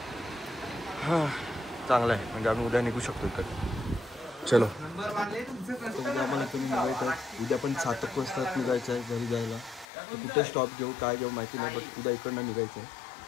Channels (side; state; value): right; drops out; at 9.9 s